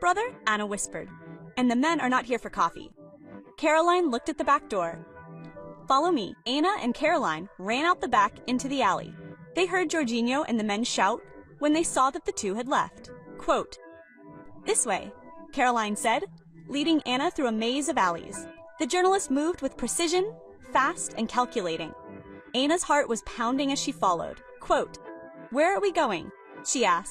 Anna whispered. And the men are not here for coffee. Caroline looked at the back door. Follow me. Anna and Caroline ran out the back into the alley. They heard Jorginho and the men shout when they saw that the two had left. Quote, this way, Caroline said, leading Anna through a maze of alleys. The journalist moved with precision, fast and calculating. Anna's heart was pounding as she followed. Quote, where are we going? She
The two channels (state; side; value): identical; both; correlation 1.00